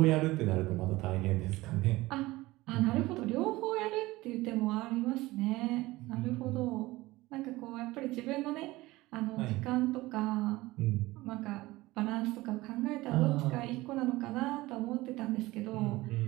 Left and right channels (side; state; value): left; quieter; 19.3 dB